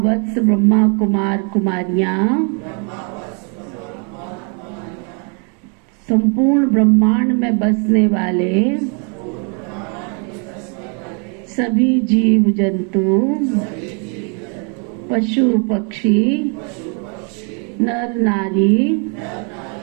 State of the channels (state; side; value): quieter; left; 37.5 dB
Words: वत्स ब्रह्मा कुमार कुमारियाँ, संपूर्ण ब्रह्मांड में बसने वाले सभी जीव जंतु, पशु पक्षी, नर नारी